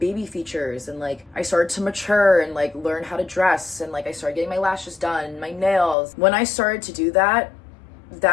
features and like I started to mature and like learn how to dress and like I started getting my lashes done, my nails. When I started to do that,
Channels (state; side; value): drops out; right; at 6.0 s